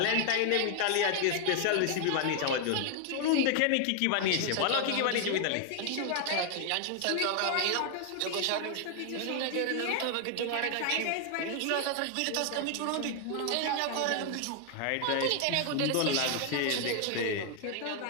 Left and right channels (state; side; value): different; both; correlation 0.00